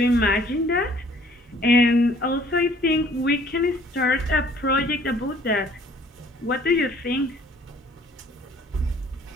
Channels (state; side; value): normal; both; correlation 0.56